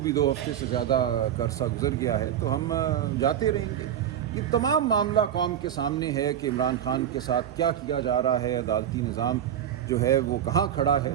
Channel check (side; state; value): left; quieter; 10.0 dB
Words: 2 ہفتے سے زیادہ کا عرصہ گزر گیا ہے تو ہم جاتے رہیں گے. یہ تمام معاملہ قوم کے سامنے ہے کہ عمران خان کے ساتھ کیا کیا جا رہا ہے، عدالتی نظام جو ہے وہ کہاں کھڑا ہے.